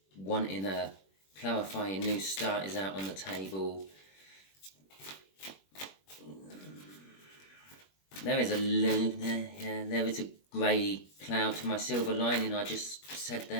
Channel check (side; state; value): right; late; 21 ms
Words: wanting a clarifying new start is out on the table. There is a grey cloud to my silver lining I just said